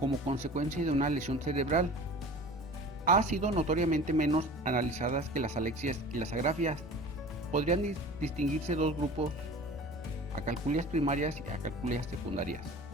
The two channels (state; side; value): normal; both; correlation 0.40